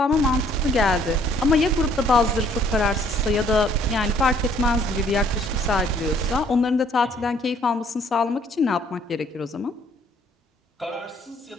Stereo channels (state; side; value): normal; both; correlation 0.62